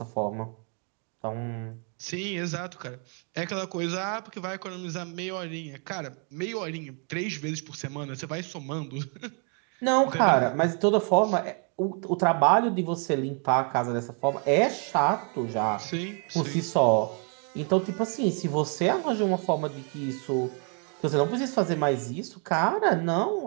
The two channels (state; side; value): quieter; left; 39.9 dB